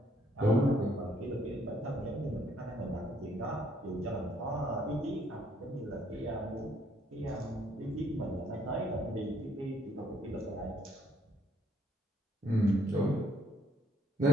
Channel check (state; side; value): normal; both; correlation 0.67